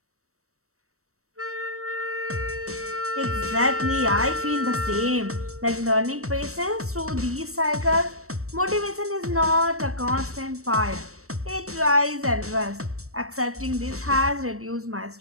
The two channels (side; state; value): left; late; 0.64 ms